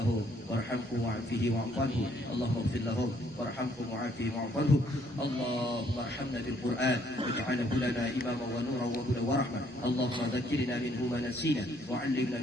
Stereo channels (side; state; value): both; normal; correlation 0.67